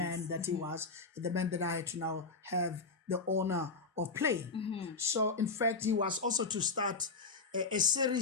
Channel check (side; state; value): right; quieter; 4.2 dB